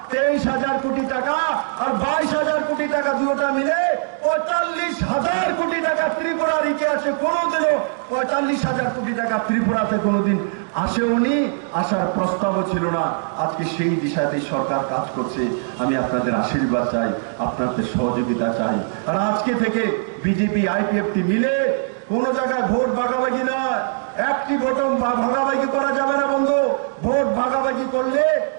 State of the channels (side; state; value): left; silent; digital silence